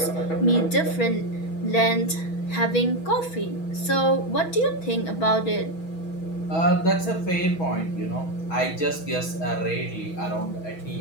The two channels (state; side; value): late; right; 6.2 ms